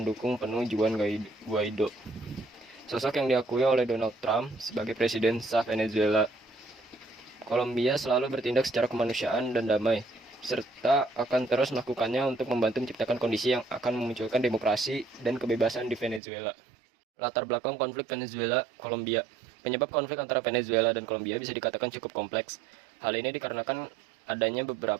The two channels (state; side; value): drops out; left; at 16.2 s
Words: penuh Juan Guaido, sosok yang diakui oleh Donald Trump sebagai presiden sah Venezuela. Kolombia selalu bertindak secara kemanusiaan dan damai, serta akan terus melakukannya untuk membantu menciptakan kondisi yang akan memunculkan demokrasi dan kebebasan di Venezuela. Latar belakang konflik Venezuela-Kolombia. Penyebab konflik antara Venezuela dan Kolombia bisa dikatakan cukup kompleks. Hal ini dikarenakan adanya